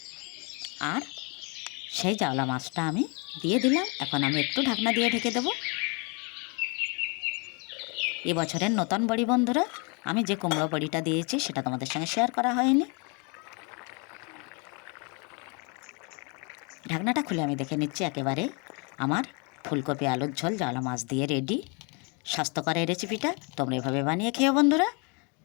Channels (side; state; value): right; quieter; 32.9 dB